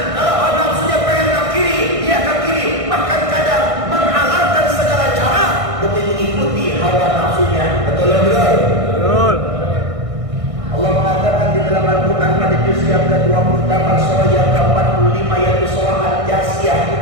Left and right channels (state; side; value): late; left; 1.6 ms